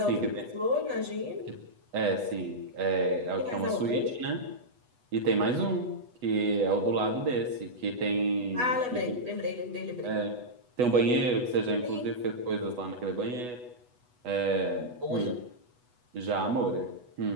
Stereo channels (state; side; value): late; left; 8.1 ms